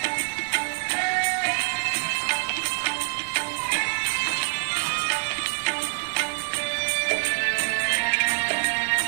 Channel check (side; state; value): left; silent; digital silence